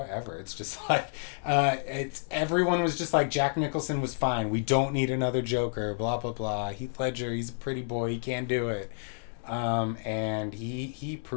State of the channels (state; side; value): silent; right; digital silence